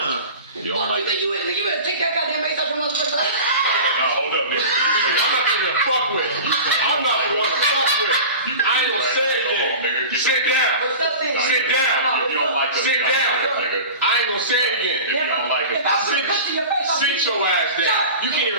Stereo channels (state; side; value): inverted; both; correlation -0.35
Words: You don't like You think you better take that goddamn bass out your motherfucking life? No, hold up, nigga. I'm not even gonna fuck with. I'm not the one to fuck with. I ain't gonna say anything. Sit down. What's up then? Sit down. If you don't like us, Sit down. nigga. I ain't gonna say it again. If you don't like If us, I put a punch in your face, I'll Sit beat your ass down. Shut. You can't